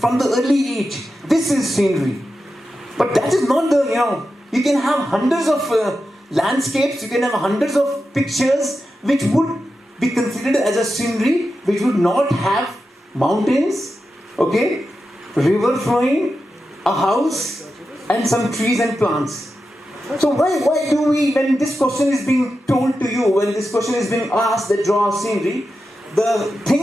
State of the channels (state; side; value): normal; both; correlation 0.90